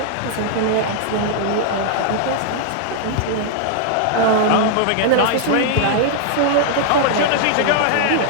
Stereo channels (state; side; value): different; both; correlation -0.01